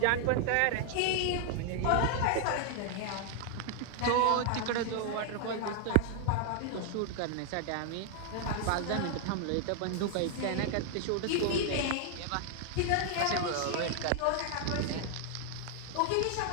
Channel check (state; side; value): different; both; correlation 0.00